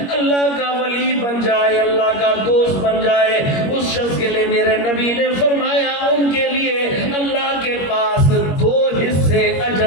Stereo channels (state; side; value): late; right; 21 ms